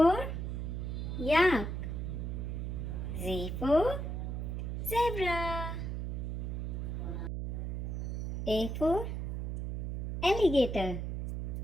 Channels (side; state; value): right; noise; hum, 3 dB below the sound